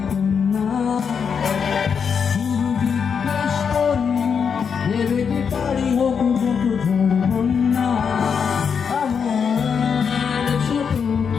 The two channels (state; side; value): quieter; right; 6.5 dB